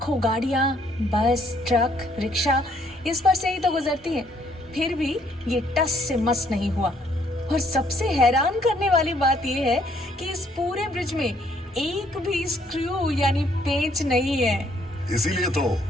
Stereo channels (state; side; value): normal; both; correlation 0.66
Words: गाड़ियां, बस, ट्रक, रिक्शा इस पर से ही तो गुजरती हैं, फिर भी ये टस से मस नहीं हुआ। और सबसे हैरान करने वाली बात ये है कि इस पूरे ब्रिज में एक भी स्क्रू यानी पेंच नहीं है। इसीलिए तो